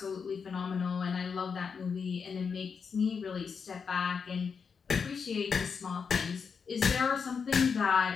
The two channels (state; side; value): quieter; right; 5.9 dB